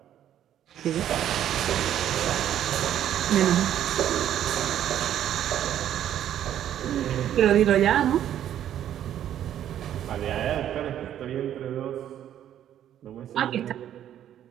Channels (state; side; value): quieter; left; 10.9 dB